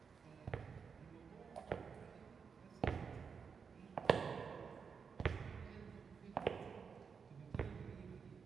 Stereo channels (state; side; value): quieter; left; 6.0 dB